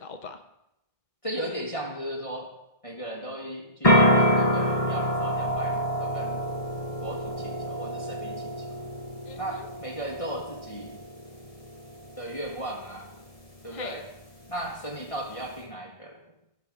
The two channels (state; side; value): late; right; 1.6 ms